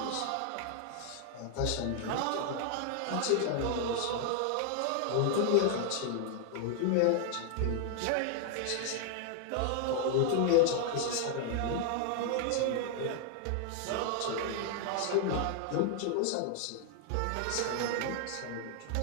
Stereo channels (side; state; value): both; different; correlation 0.00